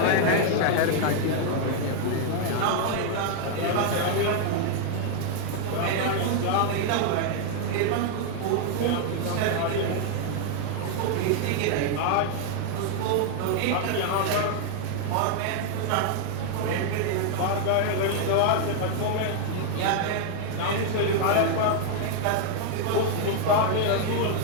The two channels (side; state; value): both; different; correlation 0.00